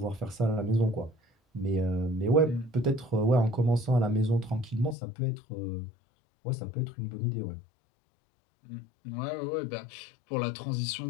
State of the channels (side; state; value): right; drops out; at 5.0 s